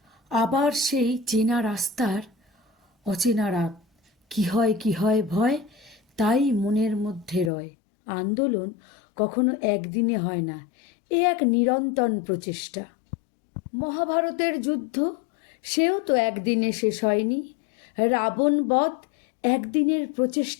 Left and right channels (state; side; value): drops out; right; at 7.5 s